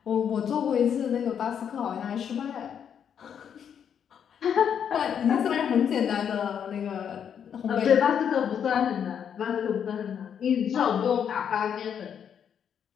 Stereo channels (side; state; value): right; quieter; 8.2 dB